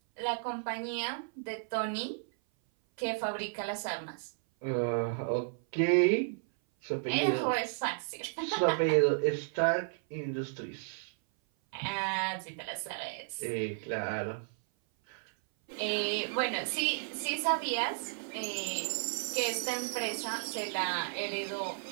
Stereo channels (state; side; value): silent; left; 55 dB below the other